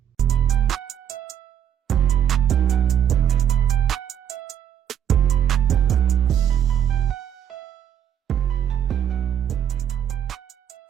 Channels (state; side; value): quieter; left; 9.5 dB